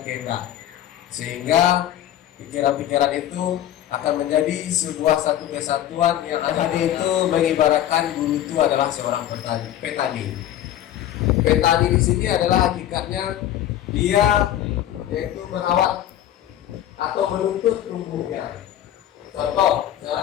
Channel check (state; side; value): quieter; right; 11.9 dB